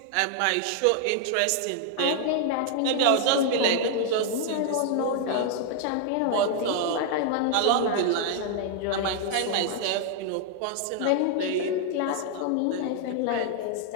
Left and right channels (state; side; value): different; both; correlation 0.00